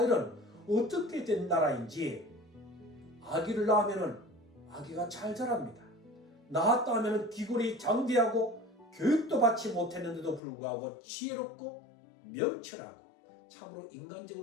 어떻게 된 나라인지 아기를 낳으면 아기가 잘 자랍니다. 낳았다 하면 기골이 장대하고 교육도 받지 못했는데도 불구하고 지혜롭고 명철하고 참으로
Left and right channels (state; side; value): drops out; right; at 10.4 s